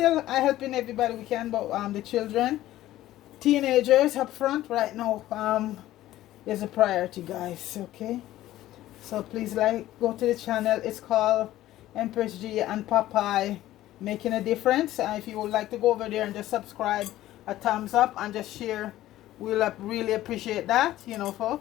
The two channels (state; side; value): quieter; right; 14.7 dB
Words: helping everybody we can, but the children, teenagers up front right now is a priority, guys. Okay, so please go to the channel. It's called Empress G and Popeye Making a Difference. And if you would like to go over there and just subscribe, a thumbs up, and just share, we'll really appreciate that.